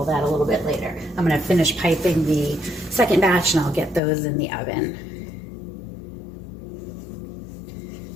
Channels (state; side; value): drops out; right; at 4.0 s